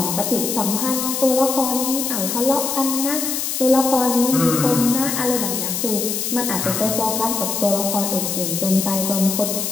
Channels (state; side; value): noise; left; hiss, 2 dB below the sound